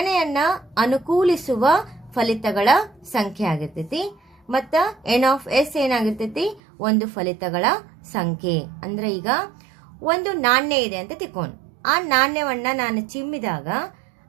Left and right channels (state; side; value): drops out; left; at 6.6 s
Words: ಅನುಕೂಲಿಸುವ ಫಲಿತಗಳ ಸಂಖ್ಯೆ ಆಗಿರ್ತೈತಿ, ಮತ್ತ ಎನ್ ಆಫ್ ಎಸ್ ಏನಾಗಿರ್ತೈತಿ ಒಂದು ಫಲಿತಗಳ ಸಂಖ್ಯೆ. ಅಂದ್ರೆ ಈಗ ಒಂದು ನಾಣ್ಯ ಇದೆ ಅಂತ ತಿಳ್ಕೊಂಡು ಆ ನಾಣ್ಯವನ್ನ ನಾನು ಚಿಮ್ಮಿದಾಗ